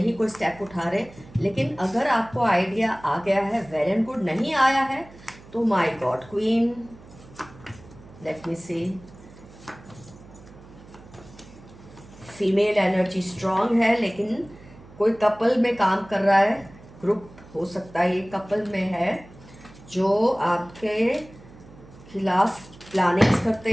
कोई स्टेप उठा रहे। लेकिन अगर आपको आइडिया आ गया है, वेल एंड गुड। नहीं आया है तो my god queen, let me see. Female energy strong है, लेकिन कोई कपल में काम कर रहा है, ग्रुप हो सकता है ये कपल में है, जो आपके खिलाफ प्लानिंग्स करते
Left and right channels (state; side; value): noise; right; hum, 21 dB below the sound